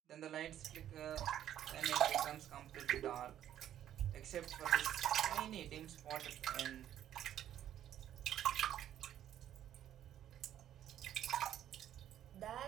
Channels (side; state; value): left; quieter; 11.2 dB